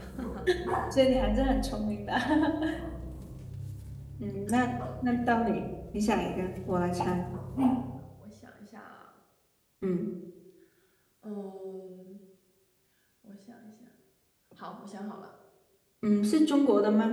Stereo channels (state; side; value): identical; both; correlation 1.00